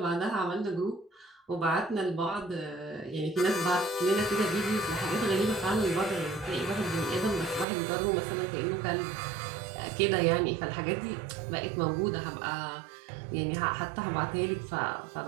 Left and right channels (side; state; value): left; drops out; at 7.7 s